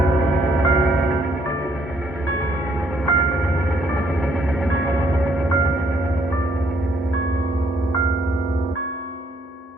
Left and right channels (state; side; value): normal; both; correlation 0.68